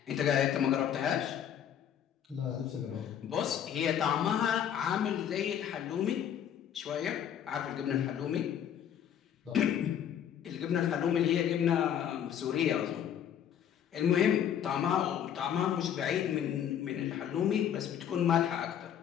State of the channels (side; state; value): right; quieter; 9.4 dB